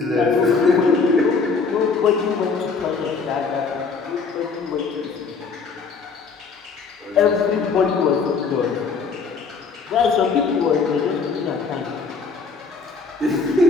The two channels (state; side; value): quieter; right; 4.8 dB